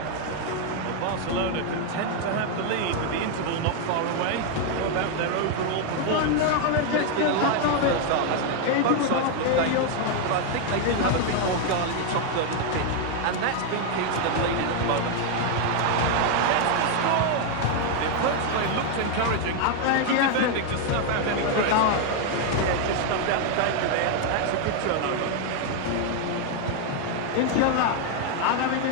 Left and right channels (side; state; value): both; different; correlation 0.01